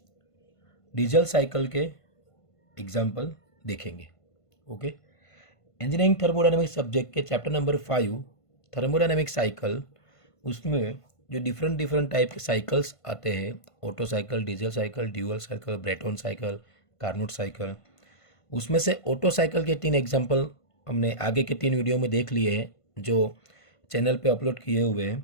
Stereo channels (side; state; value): right; late; 1.5 ms